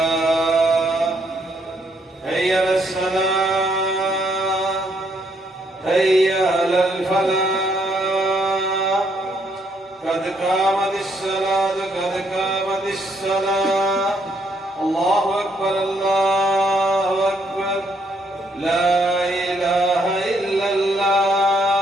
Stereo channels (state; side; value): normal; both; correlation 0.71